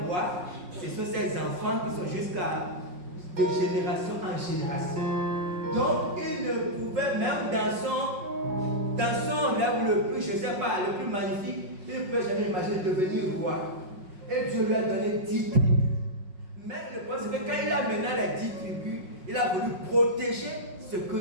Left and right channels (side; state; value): left; late; 5.5 ms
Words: roi, ce sont ses enfants qui sont jusqu'à de génération en génération. Donc, il ne pouvait même dans son rêve le plus, je ne sais pas, le plus magnifique, il ne pouvait jamais imaginer devenir roi. Et Dieu lui a donné 10 tribus. Mais le problème, c'est que quand il a mené les 10 tribus, il a voulu protéger ce